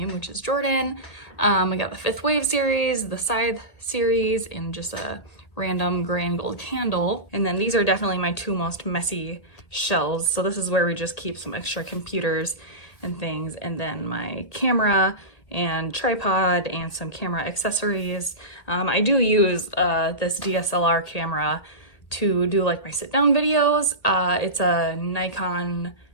which is Jordan. I got the Fifth Wave series, the Scythe series, and just a random gray and gold candle. And then these are definitely my two most messy shelves. So this is where we just keep some extra computers and things, and then my camera and tripod and some camera accessories. I do use this DSLR camera to do like my sit down videos. It's a Nikon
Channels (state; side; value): late; right; 1.8 ms